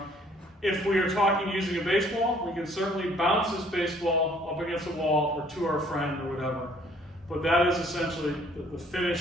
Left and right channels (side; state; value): both; normal; correlation 0.60